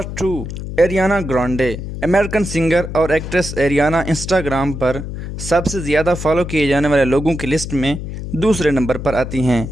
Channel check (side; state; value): left; noise; hum, 7 dB below the sound